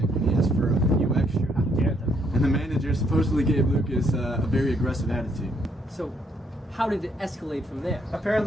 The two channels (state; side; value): normal; both; correlation 0.71